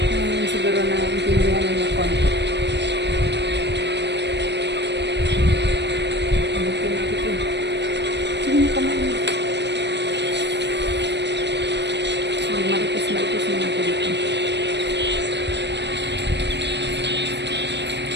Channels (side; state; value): left; late; 0.50 ms